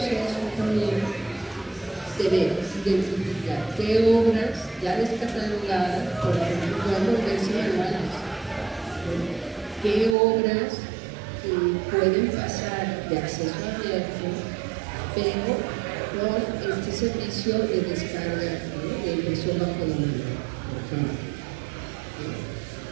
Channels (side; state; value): left; drops out; at 10.2 s